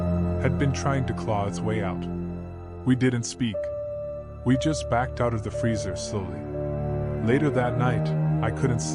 had been trying to claw its way out. We didn't speak. We just backed out of the freezer slowly. Later that night, I couldn't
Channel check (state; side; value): identical; both; correlation 1.00